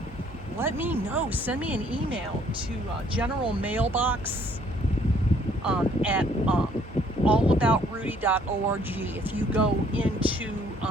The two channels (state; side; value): normal; both; correlation 0.62